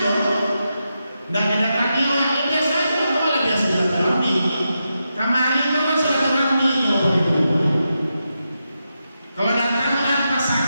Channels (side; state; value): both; inverted; correlation -0.87